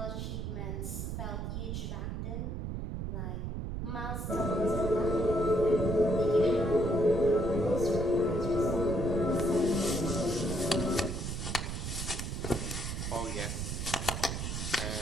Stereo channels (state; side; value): noise; right; rumble, 4 dB below the sound